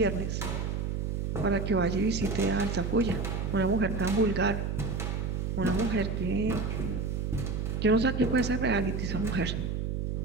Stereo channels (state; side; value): noise; right; hum, 1 dB below the sound